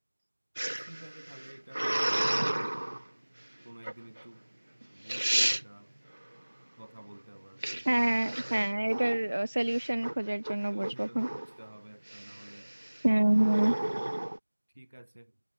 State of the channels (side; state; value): both; inverted; correlation -1.00